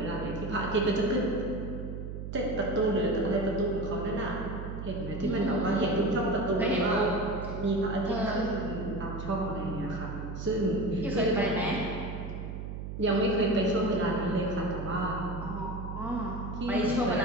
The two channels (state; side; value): noise; right; hum, 7 dB below the sound